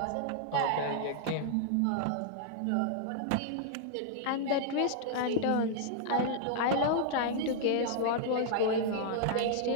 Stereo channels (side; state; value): both; different; correlation -0.01